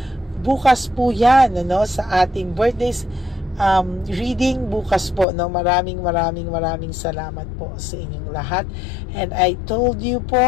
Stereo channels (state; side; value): drops out; right; at 5.2 s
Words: Bukas po yan, ano, sa ating birthdays reading bukas po, no. Maraming salamat po sa inyong lahat, and I told you